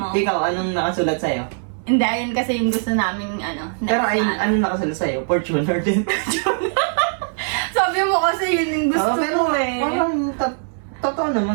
Ikaw, anong nakasulat sa'yo? Hindi, ayun kasi yung gusto namin ano. Pero ay, next na, anong nakasulat sa'yo? Fortuner din. Sabi mo kasi yun yung gusto pero ko eh. parang totoo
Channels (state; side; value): silent; left; 65 dB below the other